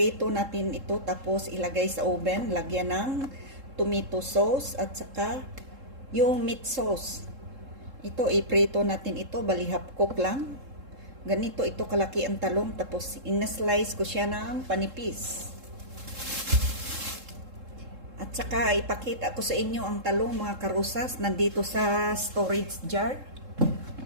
natin ito tapos ilagay sa oven. Lagyan ng tomato sauce at saka yung meat sauce. Ito, iprito natin ito. Bali half cook lang. Ganito ito kalaki ang talong, tapos ina-slice ko siya ng panipis. At saka ipakita ko sa inyo ang talong mga karusas, nandito sa storage jar.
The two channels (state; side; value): late; left; 3.7 ms